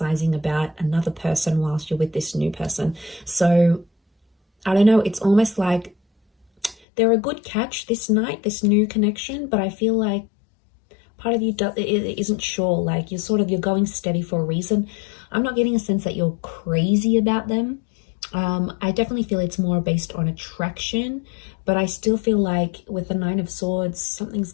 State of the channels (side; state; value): right; drops out; at 6.8 s